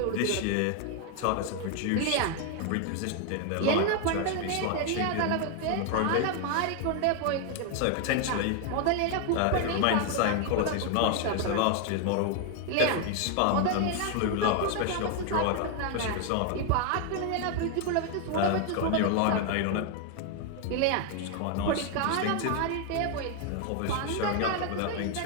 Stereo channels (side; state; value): both; different; correlation 0.00